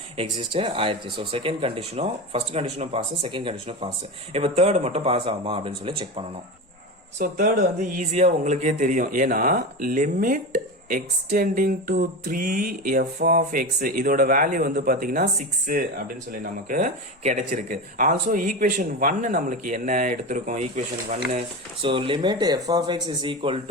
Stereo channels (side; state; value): both; normal; correlation 0.23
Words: exist ஆயிருச்சு. so செகண்ட் கண்டிஷனும் ஃபர்ஸ்ட் கண்டிஷனும் பாஸ் செகண்ட் கண்டிஷனும் பாஸ். இப்போ தேர்ட் மட்டும் பாஸ் ஆகுமா அப்படின்னு சொல்லி செக் பண்ணணும். சோ தேர்ட் வந்து ஈஸியா உங்களுக்கே தெரியும் ஏன்னா limit extending to 3 f of x இதோட வேல்யூ வந்து பாத்தீங்கன்னா 6 அப்படின்னு சொல்லி நமக்கு கிடைச்சிருக்கு. ஆல்சோ ஈக்குவேஷன் 1 நம்மளுக்கு என்ன எடுத்திருக்கோம் equation 1 so limit f of x is equal